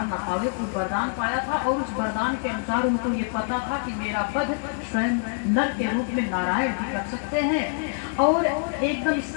ना पावे। उस वरदान पाया था और उस वरदान के अनुसार उनको ये पता था कि मेरा वध स्वयं नर के रूप में नारायण भी कर सकते हैं। और एकदम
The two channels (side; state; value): right; silent; 61 dB below the other